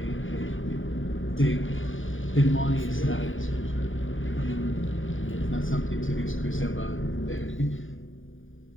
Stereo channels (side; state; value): right; late; 0.58 ms